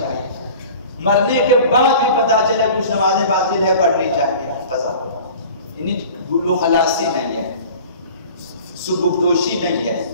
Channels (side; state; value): both; inverted; correlation -0.43